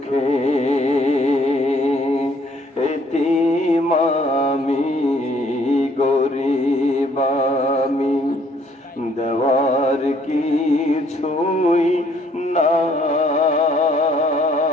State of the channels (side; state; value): both; normal; correlation 0.63